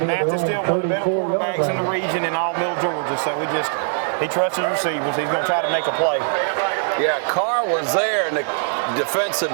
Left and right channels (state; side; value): silent; left; 65 dB below the other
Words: Mathis still one of the better quarterbacks in the region in all middle Georgia. So he trusts his receivers. He's going to try to make a play. Yeah, Carr was there, and the defensive